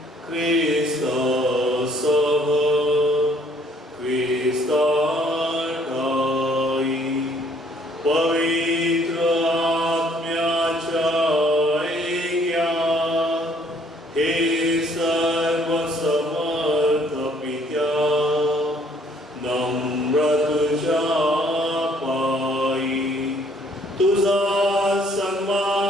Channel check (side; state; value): both; normal; correlation 0.62